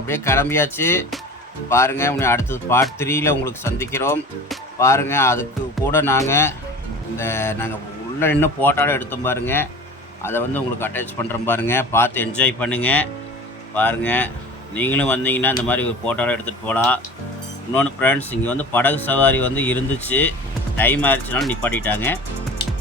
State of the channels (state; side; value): normal; both; correlation 0.38